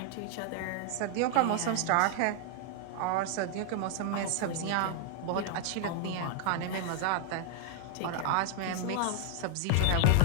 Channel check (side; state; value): both; different; correlation 0.00